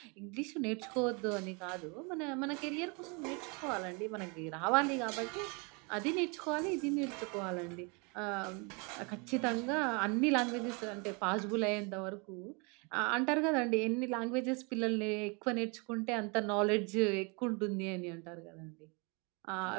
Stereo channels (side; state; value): left; quieter; 31.8 dB